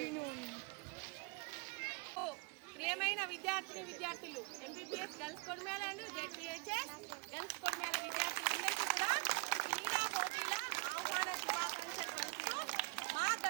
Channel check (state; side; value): quieter; left; 27.7 dB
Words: ప్రియమైన విద్యార్థులు, MPPS girls Kodimela and ZPHS girls Kodimela విద్యార్థులందరికీ కూడా క్రీడా పోటీల ఆహ్వాన శుభాకాంక్షలు తెలుపుతూ మా